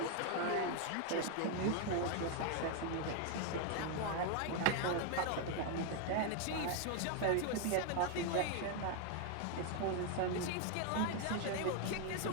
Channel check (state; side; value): different; both; correlation 0.01